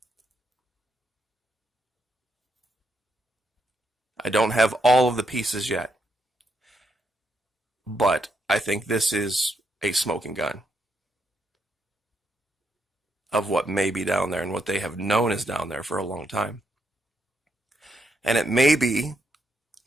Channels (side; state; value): both; normal; correlation 0.78